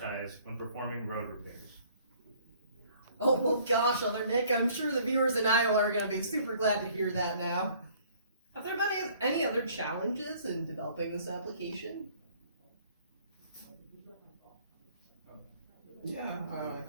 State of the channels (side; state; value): both; inverted; correlation -0.58